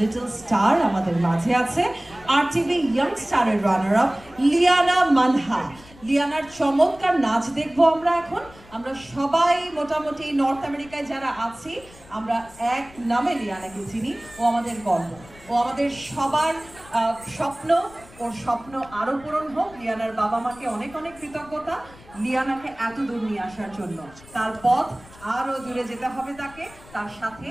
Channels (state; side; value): noise; left; rumble, 22 dB below the sound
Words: স্টার আমাদের মাঝে আছে। RTV ইয়াং স্টারের রানার আপ লিয়ানা মানহা। লিয়ানার চমৎকার নাচ দেখবো আমরা এখন। আমরা সবাই মোটামুটি নর্থ আমেরিকায় যারা আছি আমরা এক নামে লিয়ানাকে চিনি। ও আমাদের গর্ব, ও আমাদের সবার স্বপ্ন। ওর স্বপ্ন আরো পূরণ হোক। লিয়ানার বাবা মাকে অনেক অনেক কৃতজ্ঞতা লিয়ানাকে এত দূর নিয়ে আসার জন্য। তার পথ আরো দূরে যেতে হবে তাকে, তার সাথে